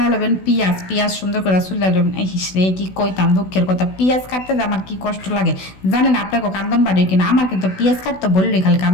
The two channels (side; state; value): right; late; 16 ms